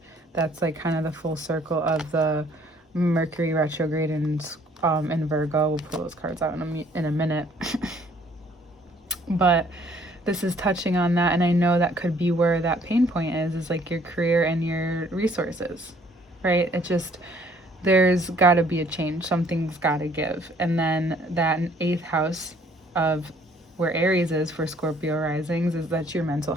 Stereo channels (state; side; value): normal; both; correlation 0.61